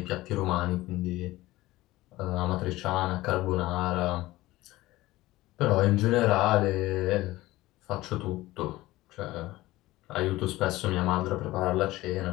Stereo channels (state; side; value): quieter; right; 18.0 dB